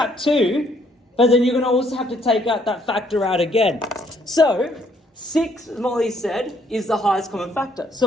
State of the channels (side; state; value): both; normal; correlation 0.67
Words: 2, but then you're going to also have to take out that factor out again. So, 6, as Molly said, is the highest common factor.